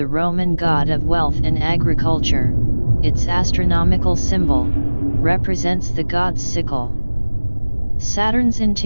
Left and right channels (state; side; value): inverted; both; correlation -1.00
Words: Roman god of wealth and agriculture. Its astronomical symbol represents the god's sickle. Saturn's